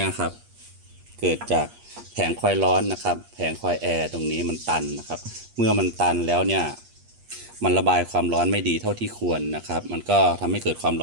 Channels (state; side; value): late; left; 8.4 ms